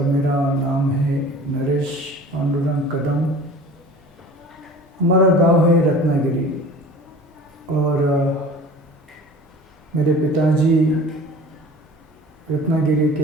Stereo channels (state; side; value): normal; both; correlation 0.42